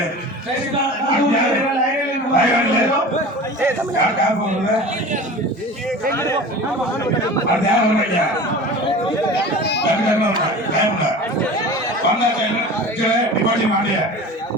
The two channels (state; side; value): normal; both; correlation 0.36